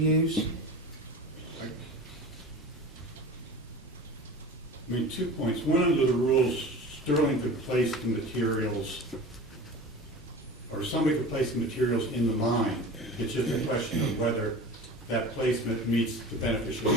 I mean, 2 points. One, under the rules, Sterling could place the materials, or somebody could place the materials in the mine. It's just a question of whether that placement meets the beneficial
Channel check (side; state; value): both; normal; correlation 0.35